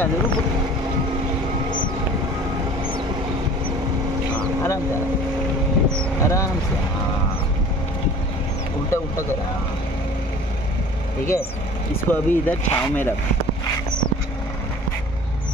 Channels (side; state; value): both; normal; correlation 0.45